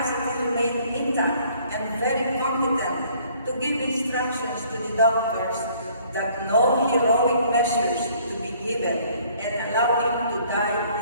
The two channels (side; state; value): both; inverted; correlation -0.59